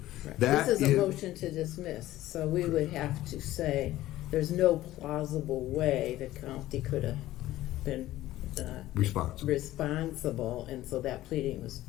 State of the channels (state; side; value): quieter; right; 15.3 dB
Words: Right. This is a motion to dismiss, so we would have to say there's no plausible way the county could have been responsible, and so that